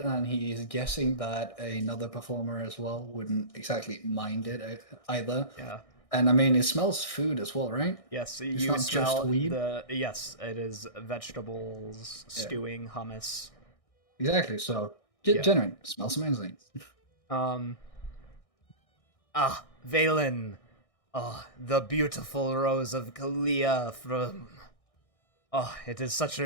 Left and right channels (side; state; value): right; late; 1.6 ms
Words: and he's guessing that another performer as well wouldn't exactly mind it either. Yeah. And I mean, it smells food as well, right? Yes, It's you not just smell weed? yes, it is vegetables, stewing, hummus. Exactly. So, Yeah. genuine. It smells amazing. Valen. Oh, the beautiful rose of Kalia from Oh, it is such